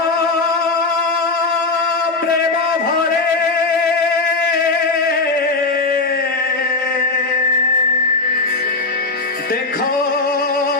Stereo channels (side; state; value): right; quieter; 3.6 dB